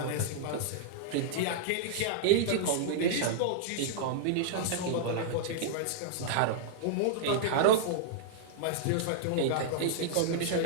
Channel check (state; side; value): different; both; correlation -0.02